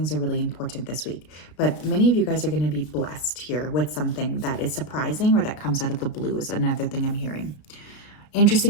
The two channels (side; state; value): right; late; 33 ms